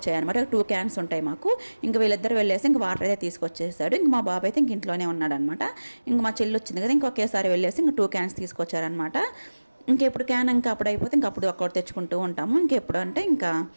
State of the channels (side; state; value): both; inverted; correlation -1.00